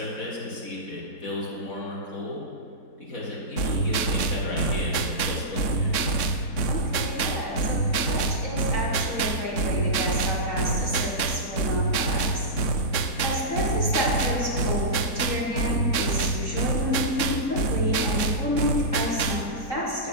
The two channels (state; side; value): late; right; 3.7 ms